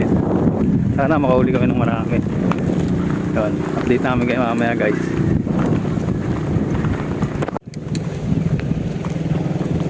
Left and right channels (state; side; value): identical; both; correlation 1.00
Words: Sana makahuli kami ng marami. Yun, update namin kayo mamaya guys.